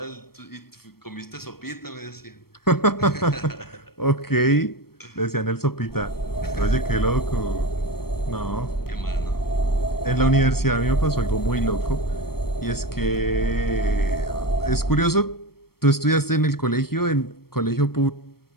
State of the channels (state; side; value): late; right; 0.94 ms